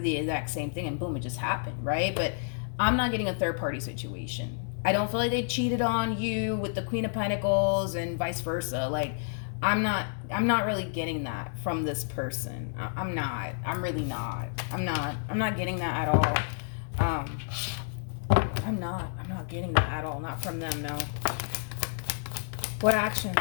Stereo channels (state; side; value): silent; right; digital silence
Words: exact same thing, and boom, it just happened, right? But I'm not getting a third party situation I don't feel like they cheated on you with the Queen of Pentacles and vice versa. Like, I'm not really getting that from this person. I'm not. I'm really not. I'm not getting that at all. I'm not getting that at all. Not from them, no. What